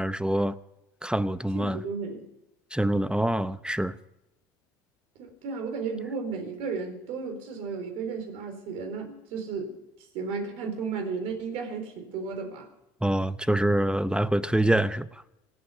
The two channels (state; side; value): normal; both; correlation 0.82